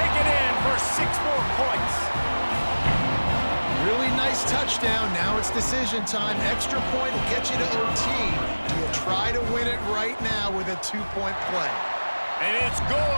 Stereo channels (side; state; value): both; inverted; correlation -1.00